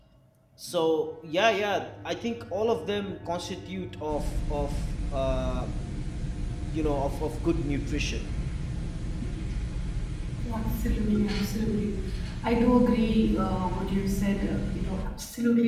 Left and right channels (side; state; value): both; identical; correlation 1.00